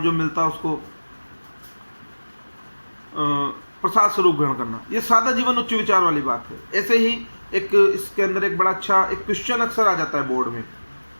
मिलता उसको प्रसाद स्वरूप ग्रहण करना। ये सादा जीवन उच्च विचार वाली बात है। ऐसे ही एक इसके अंदर एक बड़ा अच्छा एक क्वेश्चन अक्सर आ जाता है बोर्ड में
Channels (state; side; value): inverted; both; correlation -1.00